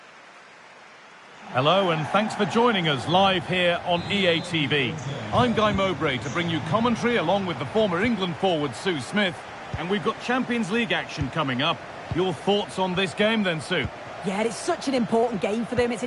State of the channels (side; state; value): both; identical; correlation 1.00